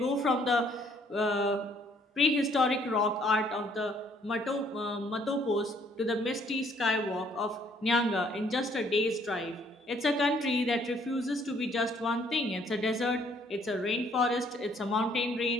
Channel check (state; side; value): normal; both; correlation 0.63